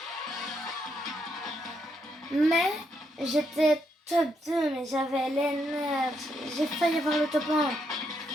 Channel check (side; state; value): both; normal; correlation 0.77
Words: Mais j'étais top 2, mais j'avais les nerfs. J'ai failli avoir le top 1.